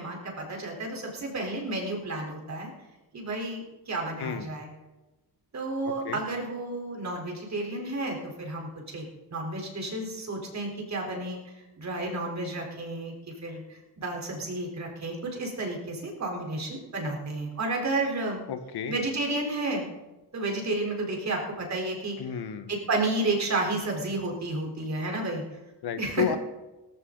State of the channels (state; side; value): normal; both; correlation -0.01